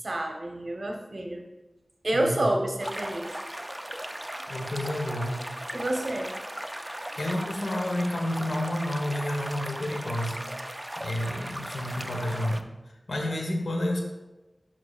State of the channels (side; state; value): both; normal; correlation 0.95